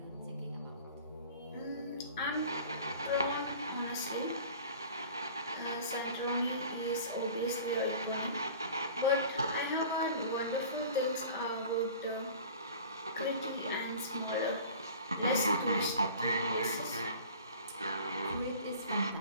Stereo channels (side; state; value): both; inverted; correlation -0.43